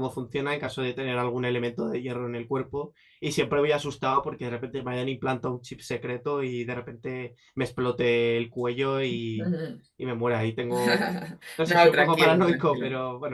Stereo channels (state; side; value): identical; both; correlation 1.00